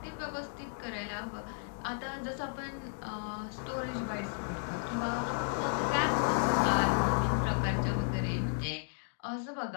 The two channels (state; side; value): silent; right; digital silence